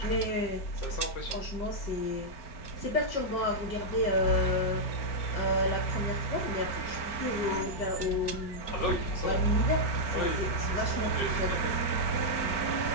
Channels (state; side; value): late; right; 4.5 ms